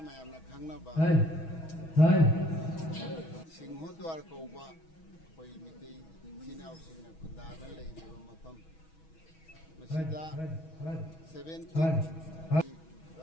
khangna ba Singhodwar kauba koi mitai sinau singna khundada leiba mafam masida 17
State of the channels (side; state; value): right; late; 6.2 ms